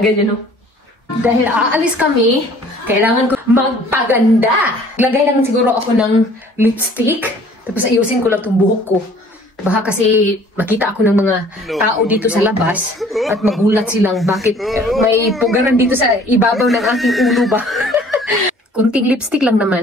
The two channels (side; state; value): both; normal; correlation 0.53